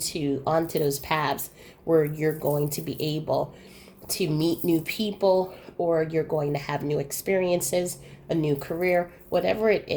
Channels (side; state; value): both; identical; correlation 1.00